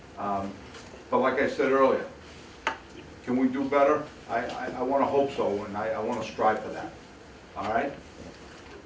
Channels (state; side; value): identical; both; correlation 1.00